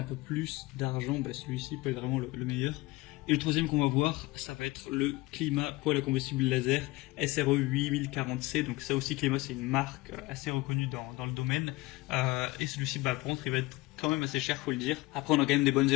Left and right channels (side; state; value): right; quieter; 20.9 dB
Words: peu plus d'argent, celui-ci peut être vraiment le meilleur. Et le troisième qu'on va voir, ça va être le Clima poêle à combustible laser SRE 8040C. Donc ça aussi, Clima, c'est une marque assez reconnue dans le domaine. Et celui-ci, par contre, il va être quand même assez cher, faut le dire. Après, on a quand même des bonnes